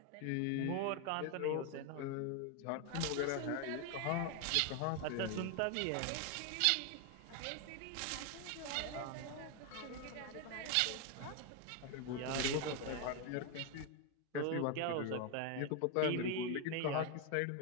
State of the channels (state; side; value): different; both; correlation 0.01